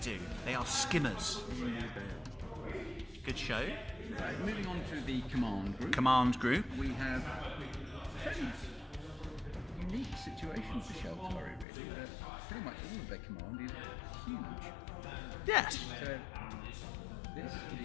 They are skimmers. Good show. Right, moving on to the Command group. We have a fairly unique situation for Shaltari, really. Pretty much all of their command is huge. Yes. So, this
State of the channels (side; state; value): right; drops out; at 11.7 s